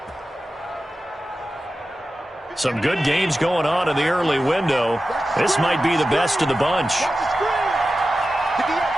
Some good games going on in the early window. This might be the best of the bunch.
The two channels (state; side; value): normal; both; correlation 0.93